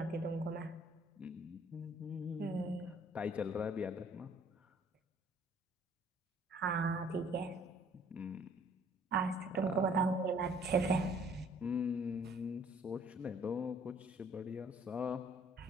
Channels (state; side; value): normal; both; correlation 0.58